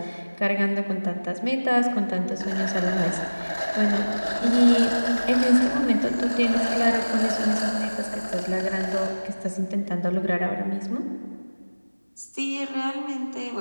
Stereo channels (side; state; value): both; inverted; correlation -1.00